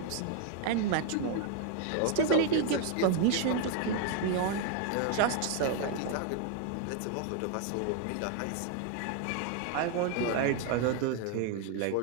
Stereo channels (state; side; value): different; both; correlation 0.00